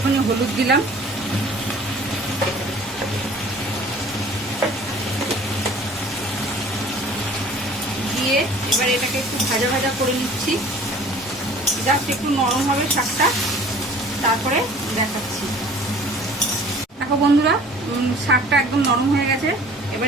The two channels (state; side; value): normal; both; correlation 0.48